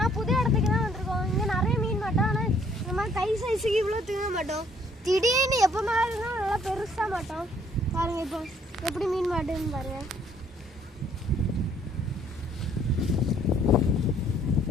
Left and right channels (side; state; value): both; normal; correlation 0.63